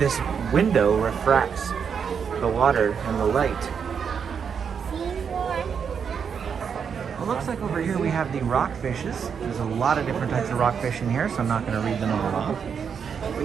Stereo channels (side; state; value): left; quieter; 6.8 dB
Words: window refracts the water and the light. It looks like over here we have the rockfishes. There's a lot of different types of rockfish in here, so I'm not going to read them all off.